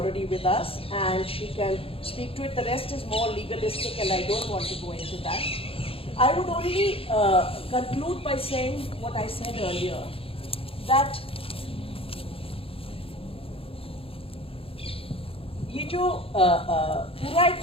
with us and she can speak to it. The rest is more legalistic and I don't want to go into that. I would only conclude by saying what I said earlier, that ये जो पूरा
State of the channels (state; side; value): late; right; 0.27 ms